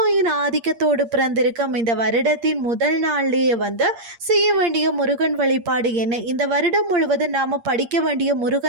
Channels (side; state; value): left; late; 8.6 ms